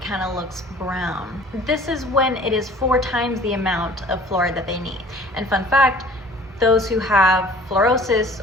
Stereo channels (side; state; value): both; normal; correlation 0.49